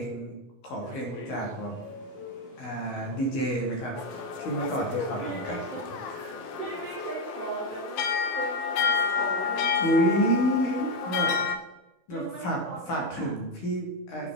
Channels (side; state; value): right; late; 14 ms